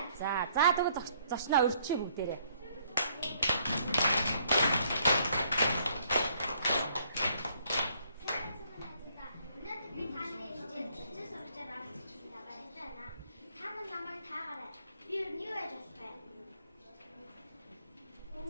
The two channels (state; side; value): inverted; both; correlation -0.66